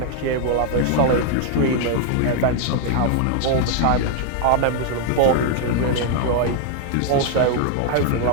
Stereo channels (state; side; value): different; both; correlation 0.00